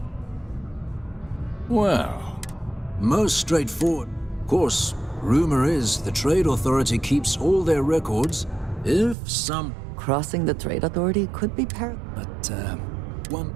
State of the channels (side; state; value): left; drops out; at 9.2 s